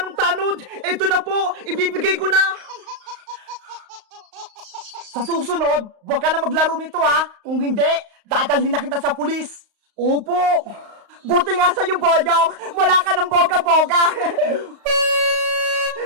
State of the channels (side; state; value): left; late; 35 ms